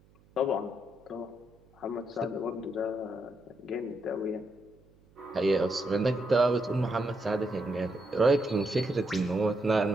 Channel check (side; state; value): right; noise; hum, 29 dB below the sound